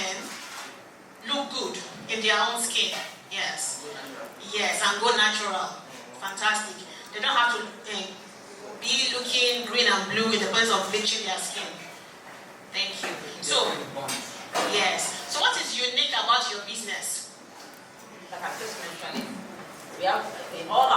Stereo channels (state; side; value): identical; both; correlation 1.00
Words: look good in their own skin. Yes. Yes, and go natural. Fantastic. They don't have to be looking green and blue in the process of bleaching their skin. Thank you. So, yes. So what is unique about your business? Like I just mentioned, we have in all